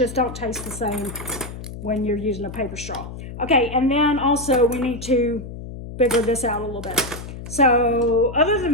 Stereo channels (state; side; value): noise; left; hum, 11 dB below the sound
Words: don't taste the same when you're using a paper straw. Okay, and then also we need to figure this out a little bit. So other